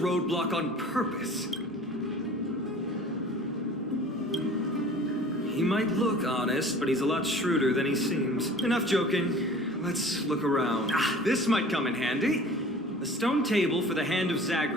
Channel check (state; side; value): normal; both; correlation 0.45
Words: on purpose? He might look honest, but he's a lot shrewder than he seems. Enough joking. Let's look around. This might come in handy. A stone table for the hand of